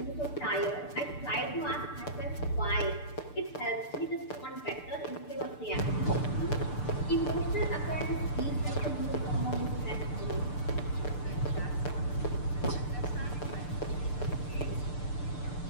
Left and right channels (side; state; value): right; late; 6.8 ms